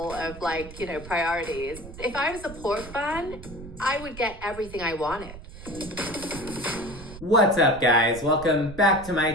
of like, priorities. If I was a pork fan, I would get everything I wanted. What's up, guys? Welcome back to my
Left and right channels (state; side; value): noise; right; rumble, 14 dB below the sound